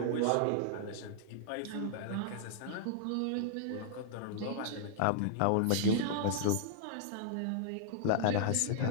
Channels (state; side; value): different; both; correlation -0.01